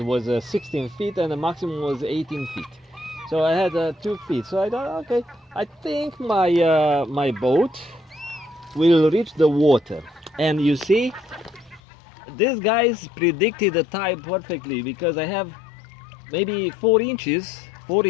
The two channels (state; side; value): drops out; right; at 11.8 s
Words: was 16 feet and the maximum was 18 feet. So I had 2 feet. So I thought, okay, I think my boat will reach the water. And you see, these guys predicted the tide perfectly, because I have maybe 4 inches